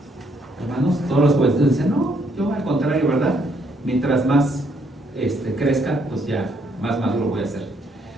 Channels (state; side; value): normal; both; correlation 0.70